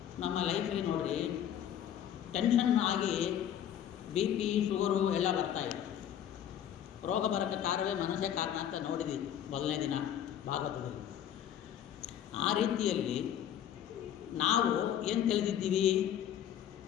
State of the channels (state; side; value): quieter; right; 10.2 dB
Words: ನಮ್ಮ ಲೈಫಲ್ಲಿ ನೋಡಿರಿ ಟೆನ್ಷನ್ ಆಗಿ ಬಿ ಪಿ ಶುಗರು ಎಲ್ಲ ಬರ್ತಾಯಿದೆ. ರೋಗ ಬರೋಕ್ಕೆ ಕಾರಣವೇ ಮನಸ್ಸೇ ಕಾರಣ ಅಂತ ನೋಡಿದ್ದೀವಿ ಮೊದಲನೇ ದಿನ ಭಾಗವತದಲ್ಲಿ. ಆ ರೀತಿಯಲ್ಲಿ ನಾವು ಏನು ತಿಳಿದಿದ್ದೀವಿ,